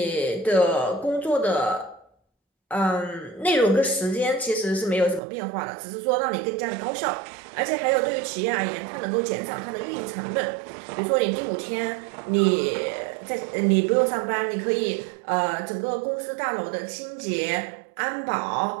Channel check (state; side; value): drops out; left; at 5.2 s